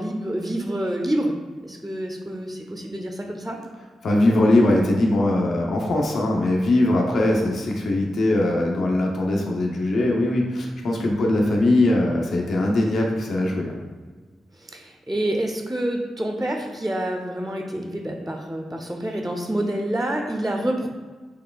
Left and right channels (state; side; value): normal; both; correlation 0.91